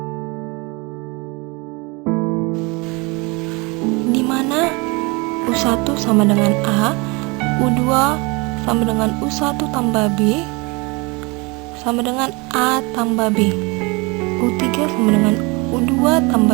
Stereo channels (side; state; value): left; quieter; 27.4 dB